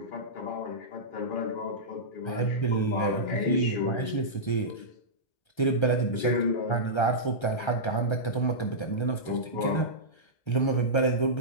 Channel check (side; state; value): right; late; 1.3 ms